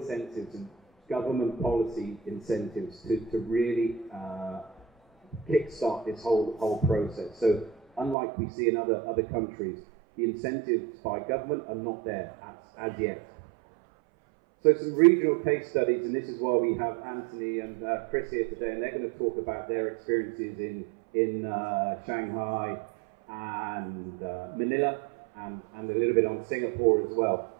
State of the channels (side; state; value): left; drops out; at 8.2 s